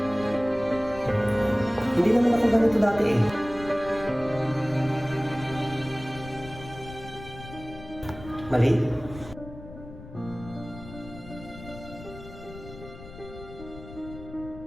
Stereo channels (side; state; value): left; noise; rumble, 15 dB below the sound